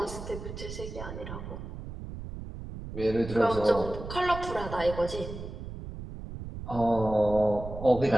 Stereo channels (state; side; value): noise; right; rumble, 10 dB below the sound